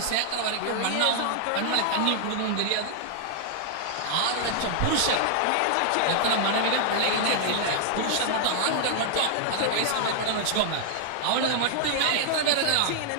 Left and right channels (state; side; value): different; both; correlation 0.00